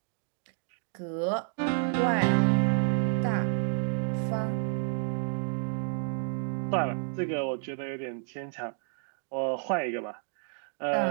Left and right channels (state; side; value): silent; left; 58 dB below the other